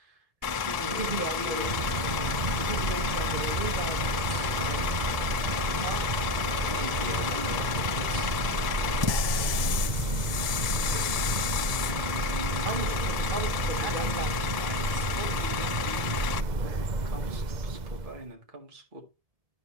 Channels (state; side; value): late; left; 1.7 ms